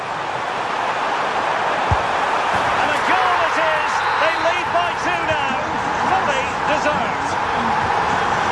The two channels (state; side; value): identical; both; correlation 1.00